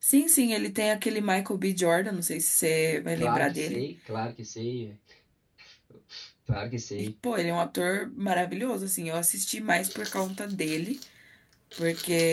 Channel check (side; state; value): both; identical; correlation 1.00